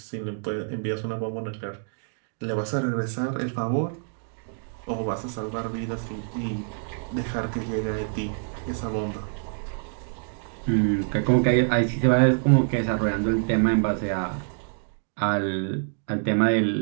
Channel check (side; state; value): left; silent; 61 dB below the other